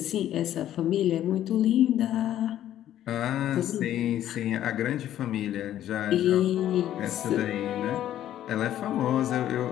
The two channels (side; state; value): right; quieter; 11.9 dB